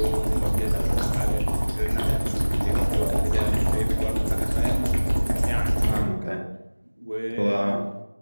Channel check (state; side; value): inverted; both; correlation -1.00